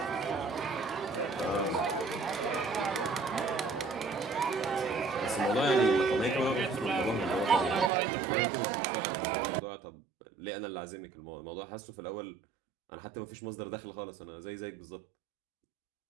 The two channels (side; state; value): left; drops out; at 7.9 s